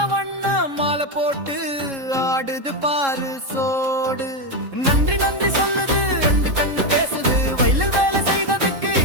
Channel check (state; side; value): late; left; 3.7 ms